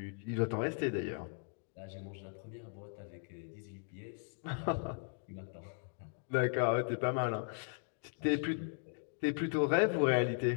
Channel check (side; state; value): right; silent; 53 dB below the other